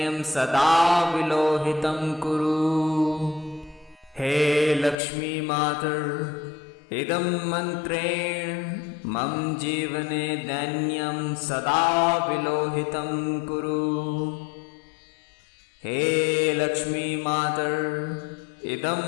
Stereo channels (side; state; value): right; drops out; at 5.0 s